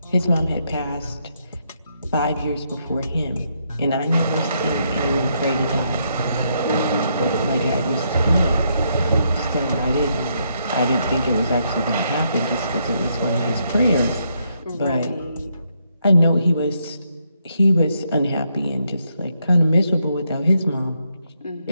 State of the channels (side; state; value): both; inverted; correlation -0.76